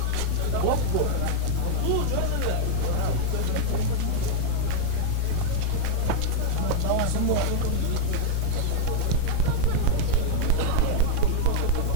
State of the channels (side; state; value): both; different; correlation 0.00